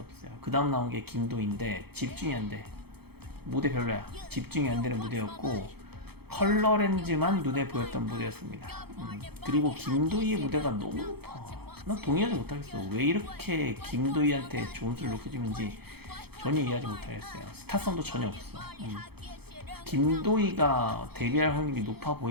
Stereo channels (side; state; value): left; late; 0.96 ms